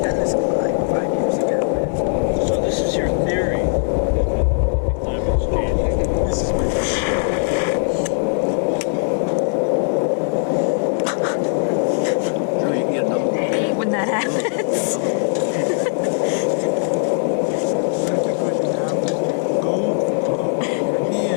done this climb 5 years ago. So this is your theory that the climate's changing. This is my theory. Drew, you can get another one. When that happens. That's because you have your GoPro in your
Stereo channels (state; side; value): silent; right; digital silence